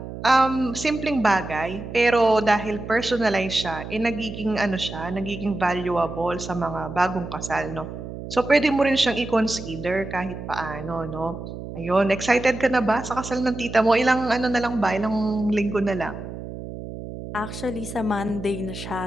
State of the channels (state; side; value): noise; right; hum, 10 dB below the sound